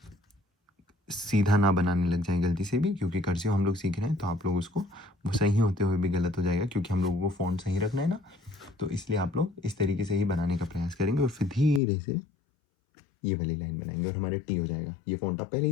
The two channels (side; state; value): right; drops out; at 11.8 s